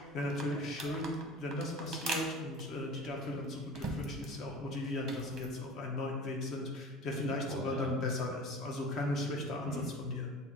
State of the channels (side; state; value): both; normal; correlation 0.38